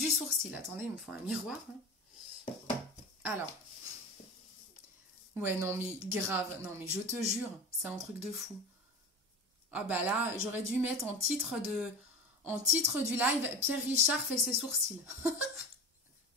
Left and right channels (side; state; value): both; normal; correlation 0.30